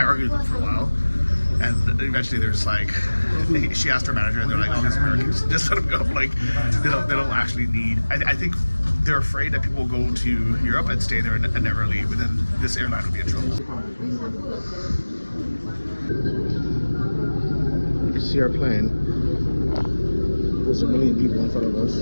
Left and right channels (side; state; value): both; inverted; correlation -1.00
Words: argued with them for a while. And eventually they're just like, she asked her manager, and they're like, oh, these Americans, just let them go. Like, they don't actually need, I think they're afraid that people will go to Europe and stay there and never leave, and then this airline will be in trouble. You can see our plane. There's a million people in front of us.